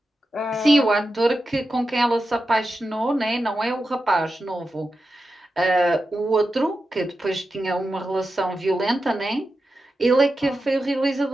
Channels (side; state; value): both; normal; correlation 0.90